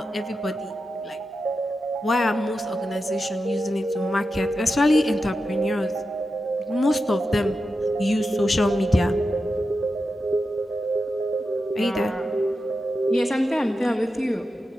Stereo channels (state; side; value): normal; both; correlation 0.89